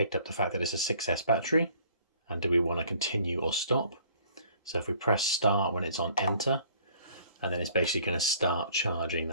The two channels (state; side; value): inverted; both; correlation -0.56